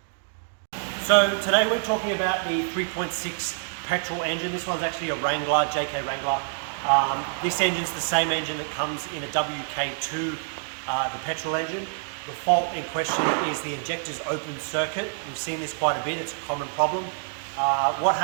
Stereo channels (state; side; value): silent; left; 61 dB below the other